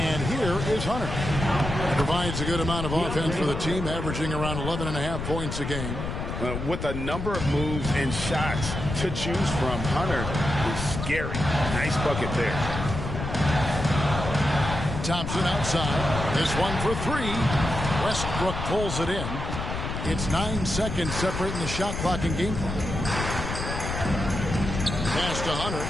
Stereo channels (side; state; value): left; noise; rumble, 5 dB below the sound